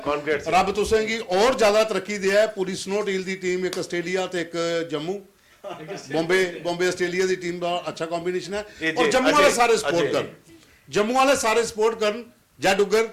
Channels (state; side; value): identical; both; correlation 1.00